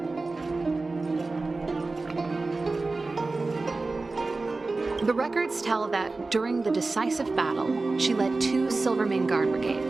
The records tell that during the decisive battle, she led 2 Silvermane Guard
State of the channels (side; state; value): left; quieter; 3.5 dB